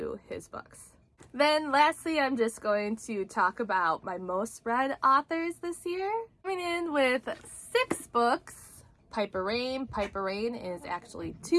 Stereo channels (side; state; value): both; identical; correlation 1.00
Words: his books. Then lastly, I'm just going to talk about my most read authors this year. Coming in with 6 books, Piper Rain. Piper Rain is actually